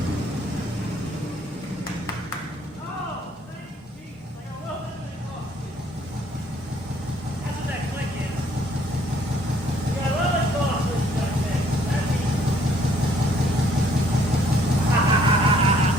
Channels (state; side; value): normal; both; correlation 0.63